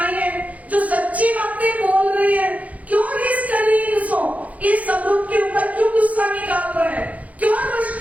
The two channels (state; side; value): late; left; 0.070 ms